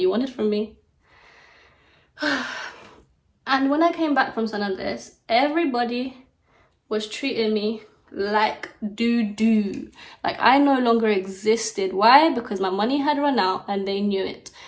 wanted from me. And when I came back from San Andres, everybody was treating me like doo-doo. Like I no longer existed. Why? Because my money had run out and they knew it.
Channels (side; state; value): both; identical; correlation 1.00